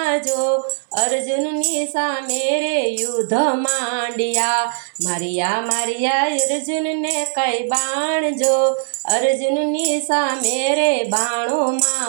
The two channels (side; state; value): left; silent; 66 dB below the other